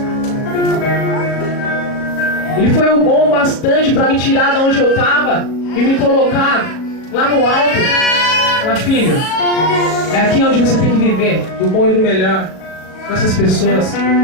Ele foi o bom bastante para me tirar de onde eu tava e me colocar lá no alto. Fala, filho, é aqui onde você tem que viver, do bom e do melhor, com essas pessoas.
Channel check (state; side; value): late; right; 37 ms